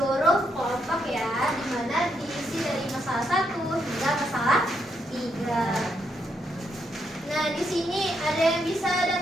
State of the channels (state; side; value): normal; both; correlation 0.78